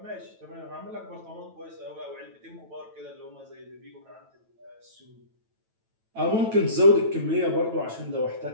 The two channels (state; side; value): late; left; 9.1 ms